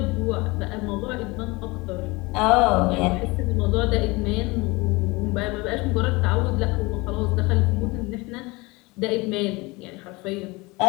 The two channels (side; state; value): right; quieter; 24.1 dB